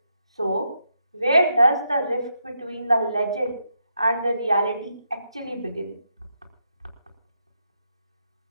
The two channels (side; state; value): both; inverted; correlation -0.81